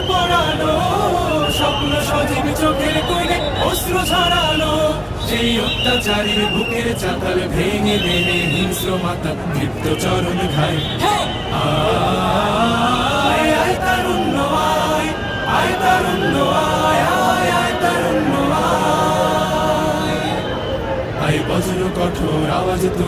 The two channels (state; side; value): identical; both; correlation 1.00